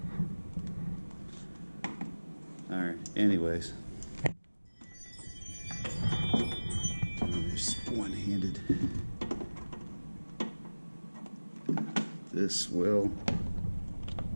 Alright, anyways. There's one-handed. This will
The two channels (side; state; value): both; inverted; correlation -1.00